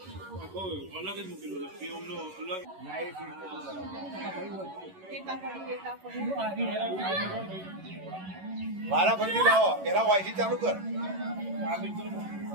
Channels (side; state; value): left; late; 11 ms